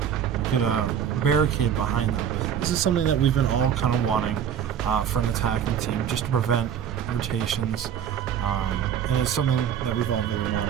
could barricade behind them. This is something that we've been all kind of wanting for an attacking team, just to prevent rotations. And it's something that we've all been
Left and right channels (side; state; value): left; quieter; 8.8 dB